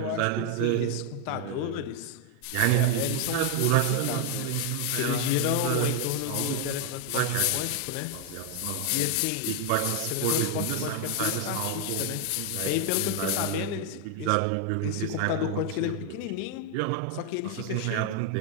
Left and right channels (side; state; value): both; different; correlation 0.00